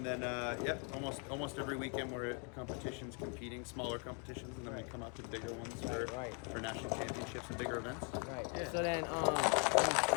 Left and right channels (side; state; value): right; quieter; 38.0 dB